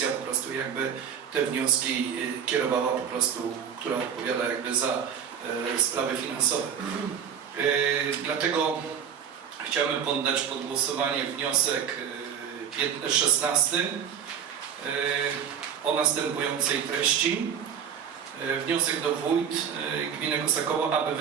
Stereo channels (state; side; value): quieter; left; 7.9 dB